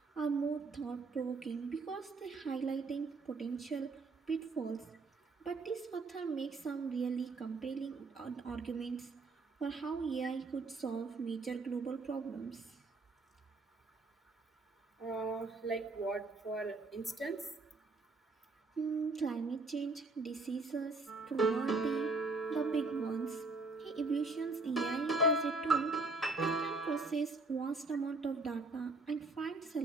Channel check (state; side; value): quieter; left; 3.5 dB